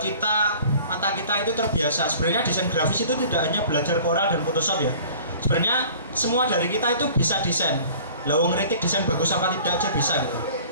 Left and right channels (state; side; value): inverted; both; correlation -0.47